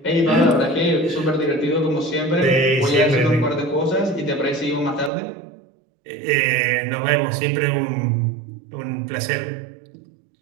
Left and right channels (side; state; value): left; drops out; at 5.1 s